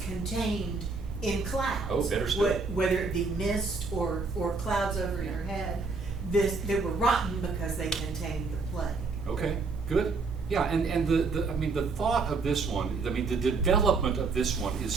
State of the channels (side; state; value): left; quieter; 4.2 dB